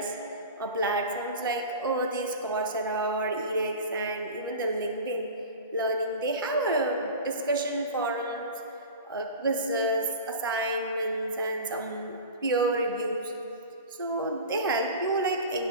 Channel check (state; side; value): inverted; both; correlation -0.32